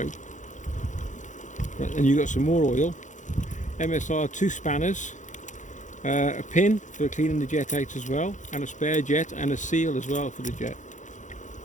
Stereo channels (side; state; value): right; late; 0.36 ms